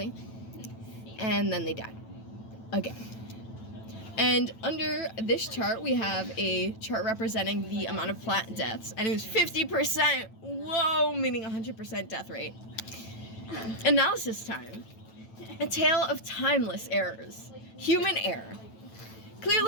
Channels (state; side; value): late; right; 9.1 ms